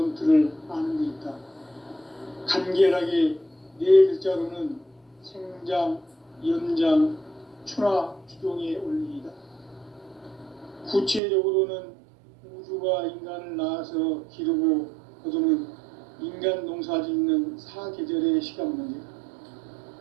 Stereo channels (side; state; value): left; drops out; at 11.2 s